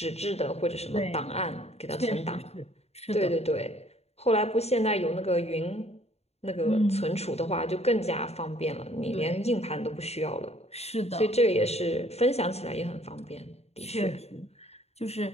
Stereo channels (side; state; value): right; late; 0.30 ms